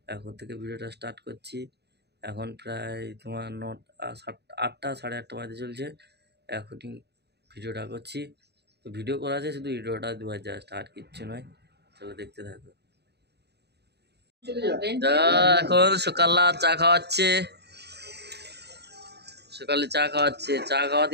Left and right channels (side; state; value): left; late; 0.48 ms